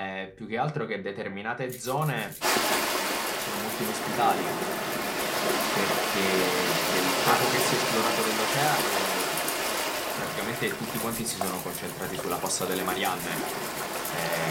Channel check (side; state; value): both; identical; correlation 1.00